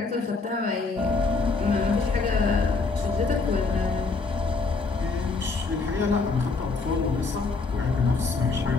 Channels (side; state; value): right; quieter; 4.2 dB